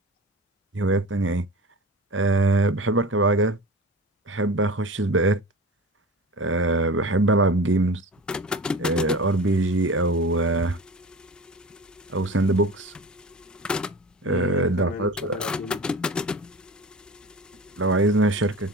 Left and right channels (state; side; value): normal; both; correlation 0.35